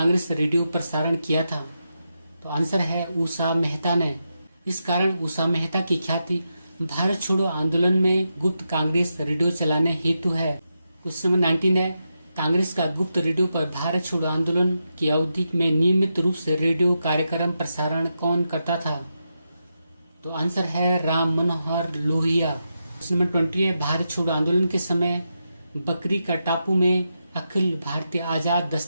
रेडियो प्रसारण किया था। तो आंसर है उषा मेहता ने। इस कारण उषा मेहता की ख्याति भारत छोड़ो आंदोलन में गुप्त कांग्रेस रेडियो चलाने हेतु है। क्वेश्चन नंबर 19 है, कांग्रेस का गुप्त रेडियो पर भारत छोड़ो आंदोलन की अवधि में नियमित रूप से रेडियो कार्यक्रम प्रसारण कौन करता था। तो आंसर है राम मनोहर लोहिया। क्वेश्चन नंबर 20 है, भारत छोड़ो आंदोलन के समय बकरी का टापू में अखिल भारतीय आजाद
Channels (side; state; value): both; inverted; correlation -0.87